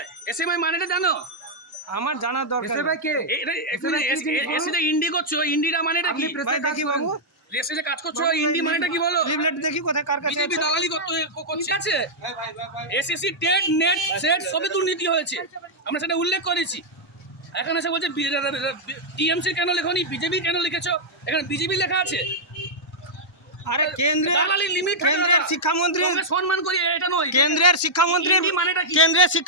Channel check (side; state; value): both; normal; correlation -0.06